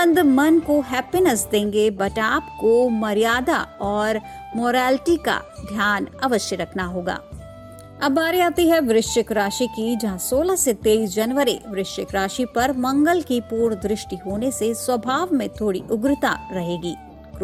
मन को हैप्पीनेस देंगे, बट आपको मर्यादा और मोरालिटी का ध्यान अवश्य रखना होगा। अब बारी आती है वृश्चिक राशि की, जहां 16 से 23 जनवरी वृश्चिक राशि पर मंगल की पूर्ण दृष्टि होने से स्वभाव में थोड़ी उग्रता रहेगी।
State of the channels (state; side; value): identical; both; correlation 1.00